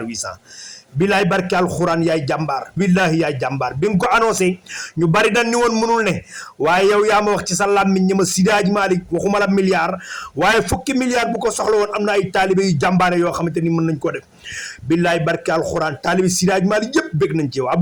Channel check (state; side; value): identical; both; correlation 1.00